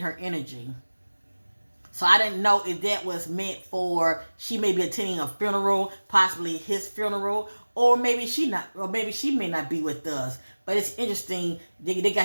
energy. So I didn't know if that was meant for she may be attending a funeral, possibly his funeral, or maybe she may not be with us. But it's interesting, they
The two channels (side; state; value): both; inverted; correlation -1.00